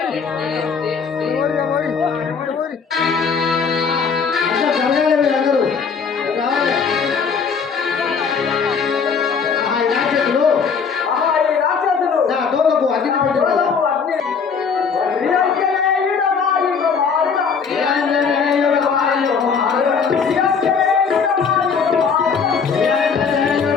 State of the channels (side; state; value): right; quieter; 5.9 dB